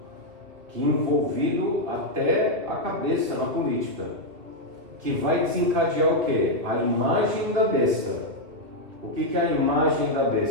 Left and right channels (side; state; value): left; late; 2.6 ms